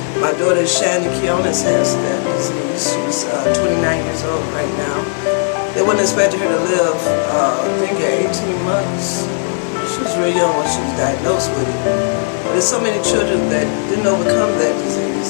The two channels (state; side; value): silent; right; 69 dB below the other